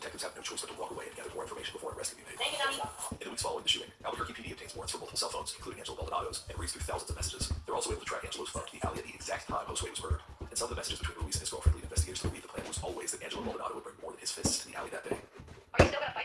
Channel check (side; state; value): both; identical; correlation 1.00